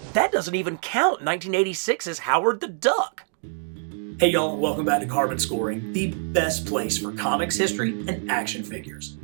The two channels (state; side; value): silent; left; 62 dB below the other